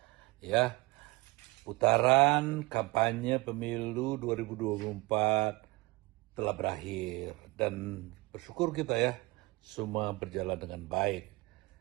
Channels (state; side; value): quieter; left; 23.5 dB